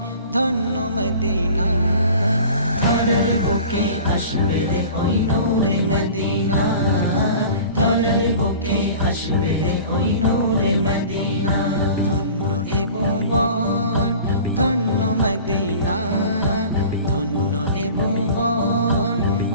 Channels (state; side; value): inverted; both; correlation -0.42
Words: ধন্য মদিনা। ধরার বুকে আসবে রে ওই নূরে মদিনা, ধরার বুকে আসবে রে ওই নূরে মদিনা। ধন্য এ ভুবন ধন্য মদিনা, ধন্য এ ভুবন